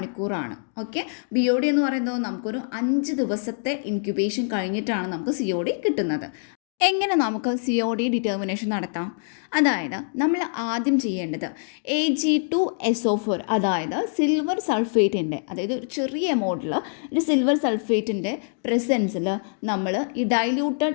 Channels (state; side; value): silent; right; digital silence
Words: ഓക്കെ, BOD എന്ന് പറയുന്നത് നമുക്കൊരു 5 ദിവസത്തെ ഇൻക്യുബേഷൻ കഴിഞ്ഞിട്ടാണ് നമുക്ക് COD കിട്ടുന്നത്. എങ്ങനെ നമുക്ക് COD ഡിറ്റർമിനേഷൻ നടത്താം? അതായത് നമ്മൾ ആദ്യം ചെയ്യേണ്ടത് Ag2SO4, അതായത് സിൽവർ സൾഫേറ്റിൻ്റെ, അതായത് ഒരു ചെറിയ എമൗണ്ടിൽ ഒരു സിൽവർ സൾഫേറ്റിൻ്റെ പ്രസൻസിൽ നമ്മൾ ഈ